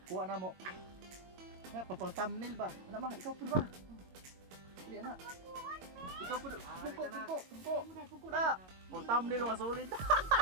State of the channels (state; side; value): late; left; 22 ms